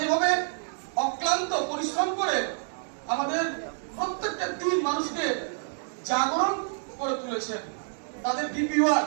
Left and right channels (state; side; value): silent; left; digital silence